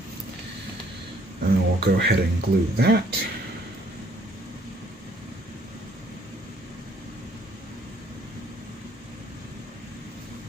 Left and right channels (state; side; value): normal; both; correlation 0.63